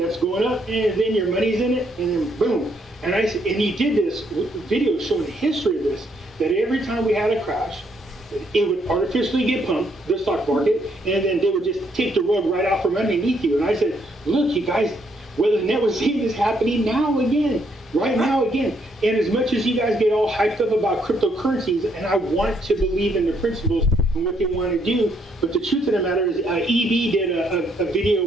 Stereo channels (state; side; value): normal; both; correlation 0.72